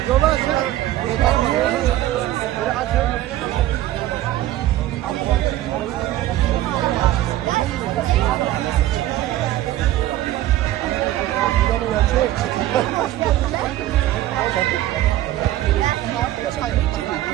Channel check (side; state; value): left; quieter; 14.4 dB